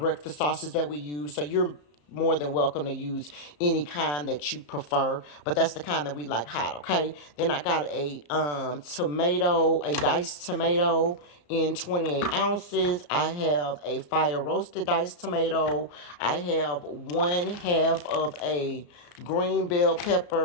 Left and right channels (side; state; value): right; late; 34 ms